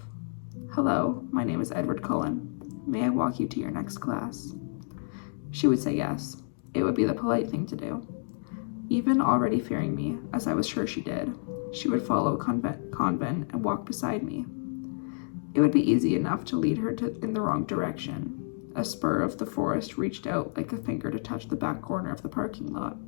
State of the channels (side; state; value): right; silent; digital silence